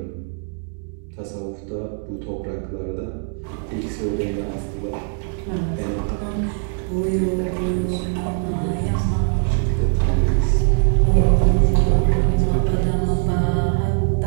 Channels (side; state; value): left; silent; 57 dB below the other